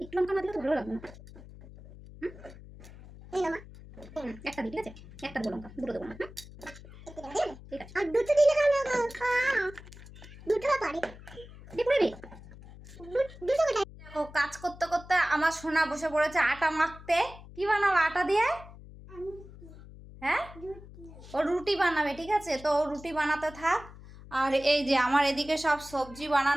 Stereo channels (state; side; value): noise; left; hum, 17 dB below the sound